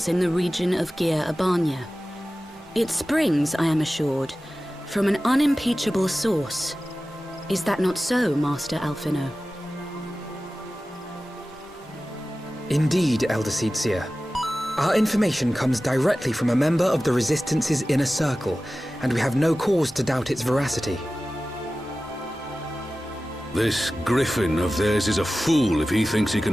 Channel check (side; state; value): both; normal; correlation 0.96